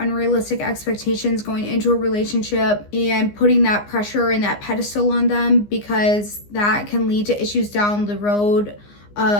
expectations going into a relationship and putting that pressure and that pedestal on them, because that can lead to issues down the road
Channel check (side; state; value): right; late; 15 ms